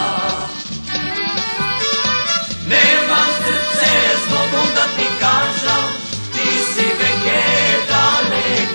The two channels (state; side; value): inverted; both; correlation -1.00